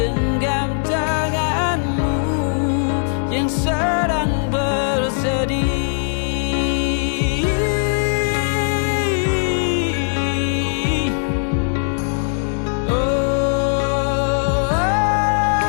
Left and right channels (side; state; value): right; silent; 62 dB below the other